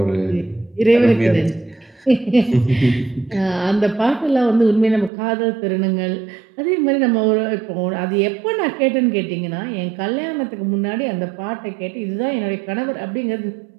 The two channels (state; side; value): drops out; left; at 5.1 s